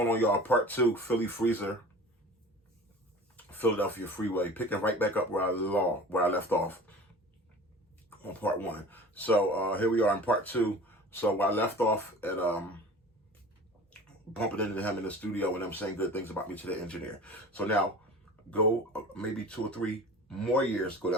on, y'all? Part two, Philly Freezer, Philadelphia Freeway, picking right back up where I left off on part one. So here we are in part two. So I left off at bumping into him in the studio and them saying good things about me to the engineer. So now go maybe 2 or 3 more years go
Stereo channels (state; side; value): normal; both; correlation 0.40